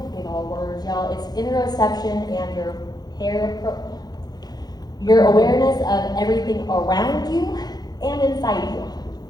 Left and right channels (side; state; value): right; late; 0.19 ms